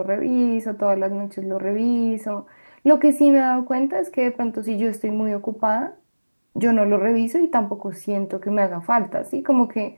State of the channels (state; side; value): inverted; both; correlation -1.00